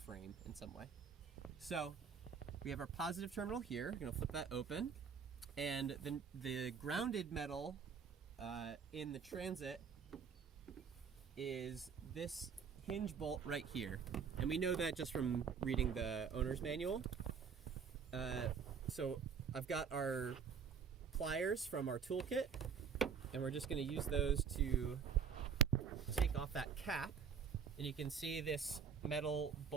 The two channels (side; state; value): left; quieter; 6.6 dB